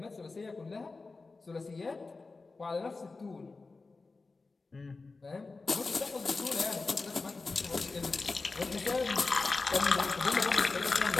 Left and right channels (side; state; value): right; quieter; 3.8 dB